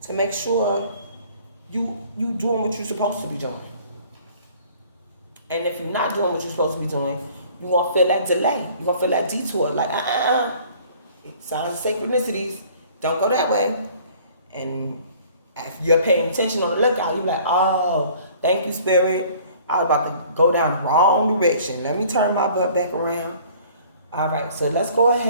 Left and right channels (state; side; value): inverted; both; correlation -0.53